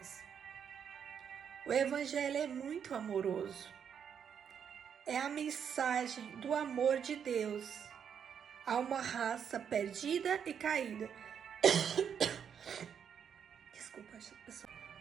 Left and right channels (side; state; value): left; quieter; 7.8 dB